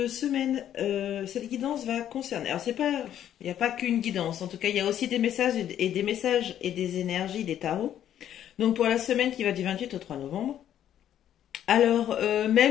guidance va concerner. Alors c'est pas, il n'y a pas qu'une guidance. En tout cas, il y a aussi des messages et des messages et des énergies des tarots. Donc pour la semaine qui va du 28 au 3 novembre. Alors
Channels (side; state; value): right; quieter; 10.7 dB